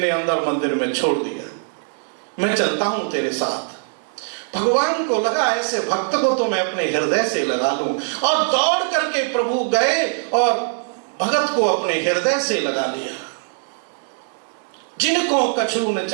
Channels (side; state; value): left; silent; 65 dB below the other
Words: अंदर मंदिर में छोड़ दिया, मैं चलता हूं तेरे साथ। भगवान को लगा ऐसे भक्त को तो मैं अपने हृदय से लगा लूं, और दौड़ करके प्रभु गए और भगत को अपने हृदय से लगा लिया। जिनको कछु न